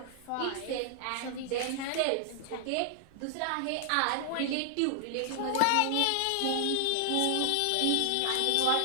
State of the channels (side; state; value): both; different; correlation 0.00